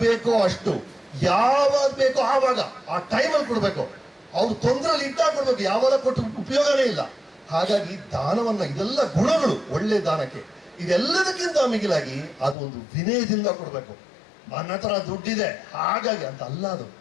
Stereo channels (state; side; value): drops out; right; at 12.6 s